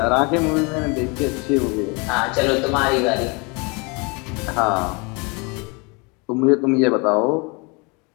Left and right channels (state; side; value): quieter; right; 30.0 dB